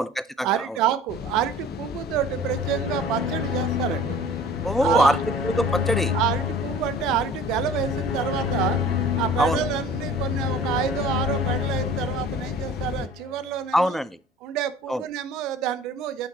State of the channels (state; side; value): normal; both; correlation 0.45